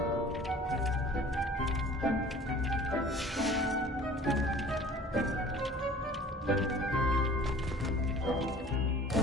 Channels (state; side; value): normal; both; correlation 0.48